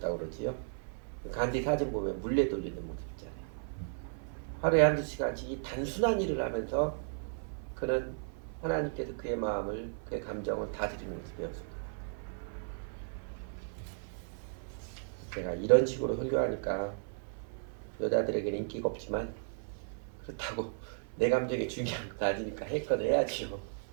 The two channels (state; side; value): silent; left; 54 dB below the other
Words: 그러지요. 간디 사진 보면 물레 돌리는 모습 있잖아요. 하루에 한두 시간씩 이 단순한 일을 하면서 그는 하나님께서 그의 마음을, 그의 감정을 다스리는 것을 배웠습니다. 제가 이런 식으로 설교하니까 여자들에게는 인기가 없지만, 그렇다고 내 감정이 중요한 거 아니니까 했건 해야지요.